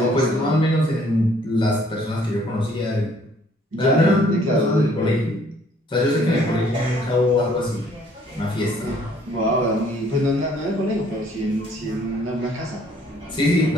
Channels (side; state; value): both; normal; correlation 0.61